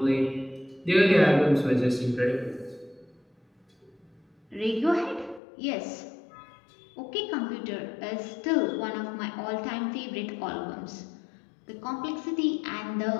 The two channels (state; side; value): drops out; right; at 5.4 s